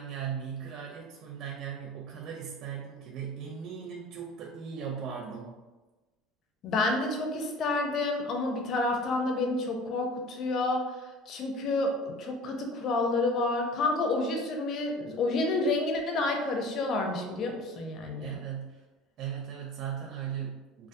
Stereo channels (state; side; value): normal; both; correlation 0.41